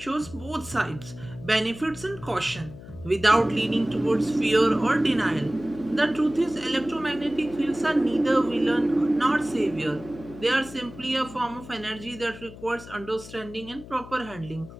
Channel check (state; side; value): noise; left; hum, 16 dB below the sound